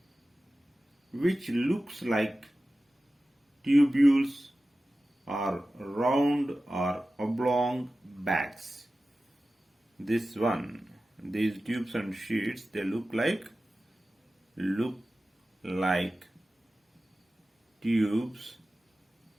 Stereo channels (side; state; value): both; normal; correlation 0.95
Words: which looks like tubules or round or oblong bags. This one, these tubes and sheets, they look like tubes